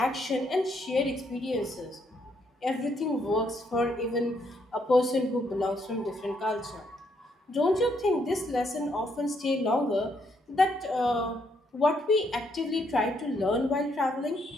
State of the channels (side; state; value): both; normal; correlation 0.74